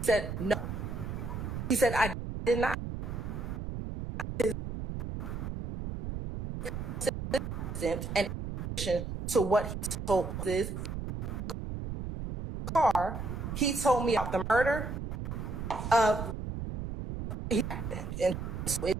said no. He said I did not. And to what he told this car, he told me about the murder of and it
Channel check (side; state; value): right; noise; rumble, 5 dB below the sound